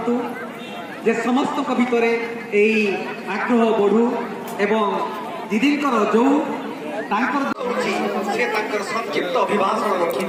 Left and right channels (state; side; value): identical; both; correlation 1.00